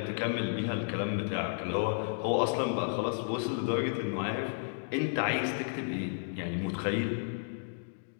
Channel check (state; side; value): silent; right; digital silence